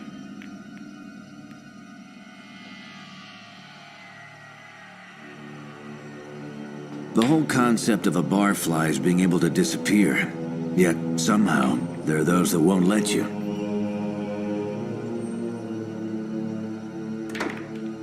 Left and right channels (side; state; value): both; identical; correlation 1.00